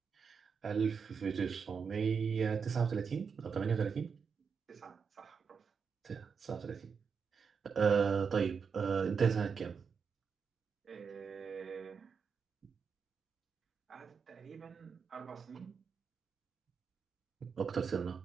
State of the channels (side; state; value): left; quieter; 6.0 dB